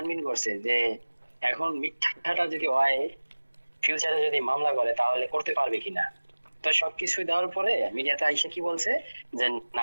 করছে যে এখন মিথ্যাটা যদি হয় ফিউচারে যদি মামলা করে তাহলে করতে পারবে কিনা। তো সবকিছু দেওয়ার পরে মিডিয়াতে আইসা কি বলছে যে না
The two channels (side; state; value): both; inverted; correlation -1.00